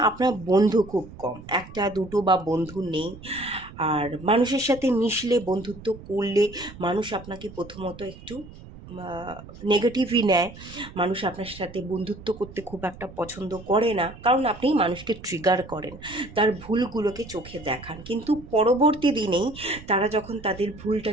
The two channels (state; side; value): noise; right; rumble, 17 dB below the sound